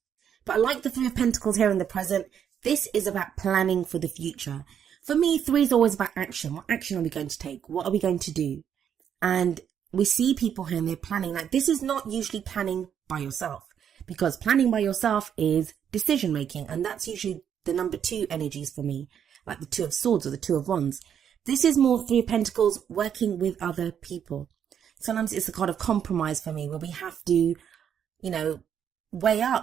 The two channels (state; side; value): quieter; left; 8.6 dB